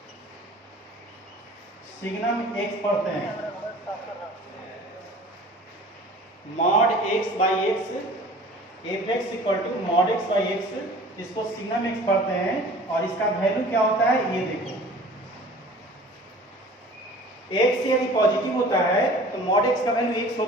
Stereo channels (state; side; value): normal; both; correlation 0.45